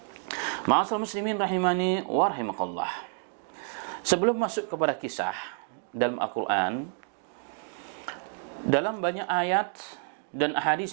Ma'asal muslimin rahimani wa rahimakallah. Sebelum masuk kepada kisah dalam Al-Quran, dalam banyak ayat dan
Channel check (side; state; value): left; silent; 56 dB below the other